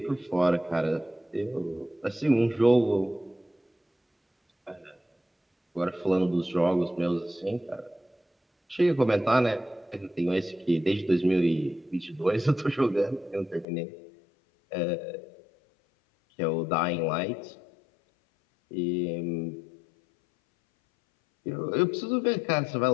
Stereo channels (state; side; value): drops out; right; at 13.7 s